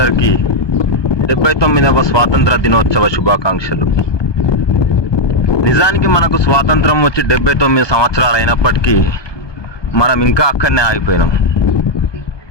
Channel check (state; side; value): late; right; 1.2 ms